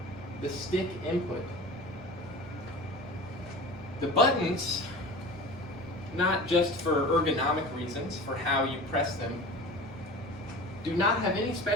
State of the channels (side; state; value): both; normal; correlation 0.36